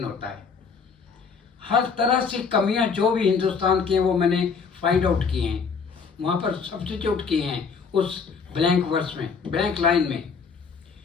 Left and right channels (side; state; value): right; quieter; 5.5 dB